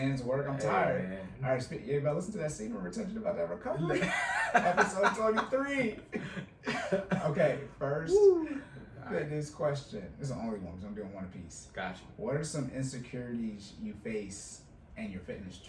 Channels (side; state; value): both; identical; correlation 1.00